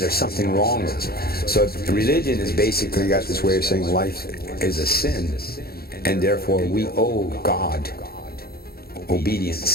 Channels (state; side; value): late; right; 0.45 ms